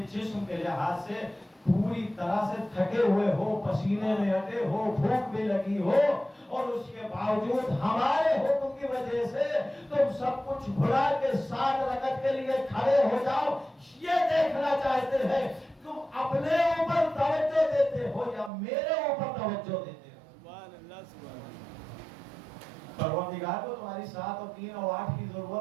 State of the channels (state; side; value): drops out; left; at 18.5 s